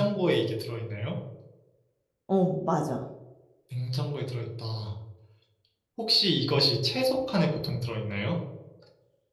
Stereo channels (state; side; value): identical; both; correlation 1.00